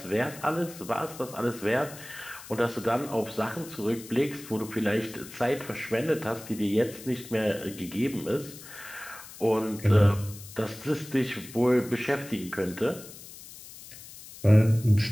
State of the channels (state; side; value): noise; left; hiss, 16 dB below the sound